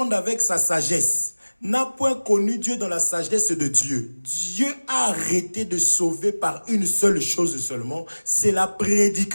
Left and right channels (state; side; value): inverted; both; correlation -1.00